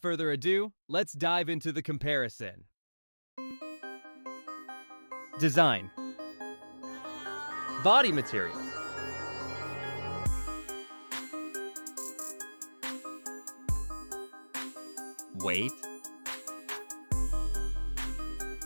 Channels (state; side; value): inverted; both; correlation -1.00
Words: further ado, let's dive into the comparison. Design. Body material. Weight.